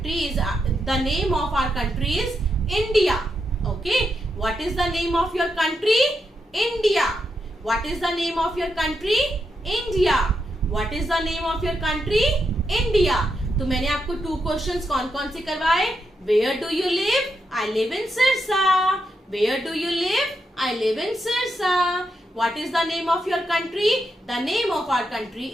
is the name of our country is India. Okay, what is the name of your country? India. What is the name of your country? India. What is the name of your country? India. तो मैंने आपको 2 questions कौन कौन से करवाए? Where do you live? I live in Sirsa. Where do you live? I live in Sirsa. What is the name of your country? The name of our country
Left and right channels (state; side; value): normal; both; correlation 0.83